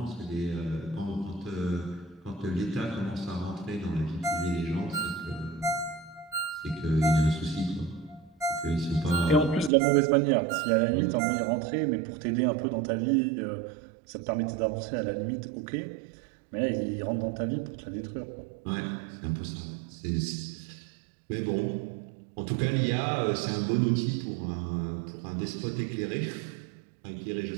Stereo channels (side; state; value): left; drops out; at 9.7 s